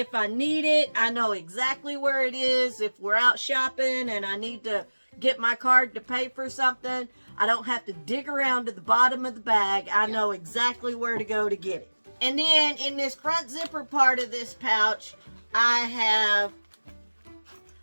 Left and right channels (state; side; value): inverted; both; correlation -1.00